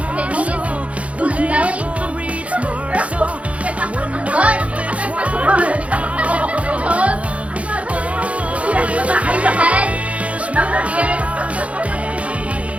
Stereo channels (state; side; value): late; left; 0.064 ms